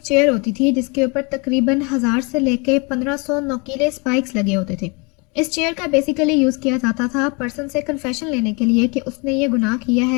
चेयर होती थी जिसके ऊपर तकरीबन 1000 से लेके 1500 नोकीले स्पाइक्स लगे होते थे। इस चेयर का बेसिकली यूज़ किया जाता था पर्सन से कन्फेशन लेने के लिए कि उसने ये गुनाह किया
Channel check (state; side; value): quieter; right; 30.3 dB